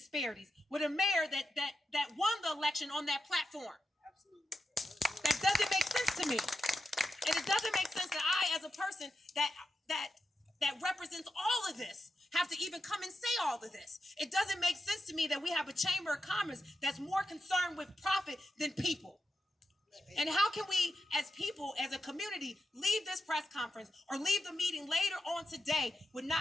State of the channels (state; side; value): normal; both; correlation 0.88